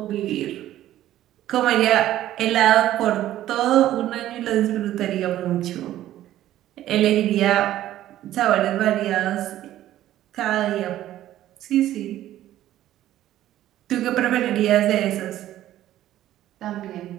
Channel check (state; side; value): quieter; left; 13.4 dB